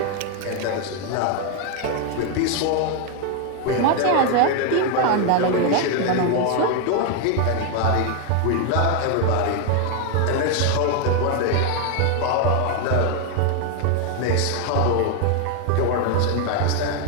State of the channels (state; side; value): different; both; correlation 0.01